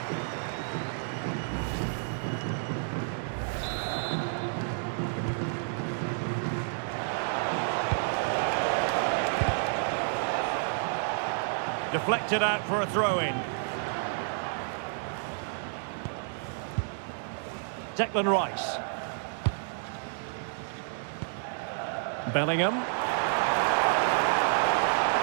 Deflected out for a throw-in. Declan Rice. Bellingham.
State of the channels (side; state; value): left; silent; digital silence